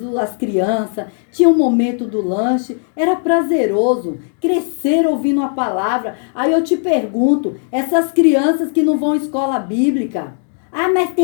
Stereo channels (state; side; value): silent; right; 56 dB below the other